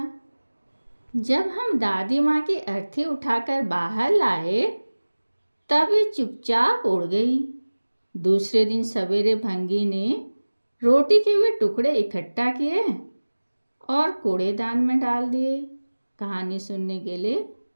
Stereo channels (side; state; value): both; inverted; correlation -1.00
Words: जब हम दादी माँ की अर्थी उठाकर बाहर लाए, तब वे चुपचाप उड़ गई। दूसरे दिन सवेरे भंगी ने रोटी के वे टुकड़े इकट्ठा किए और कूड़ेदान में डाल दिए। कहानी सुनने के लिए